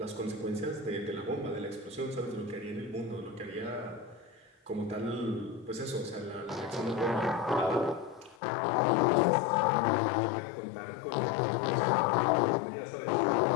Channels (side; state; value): right; drops out; at 8.3 s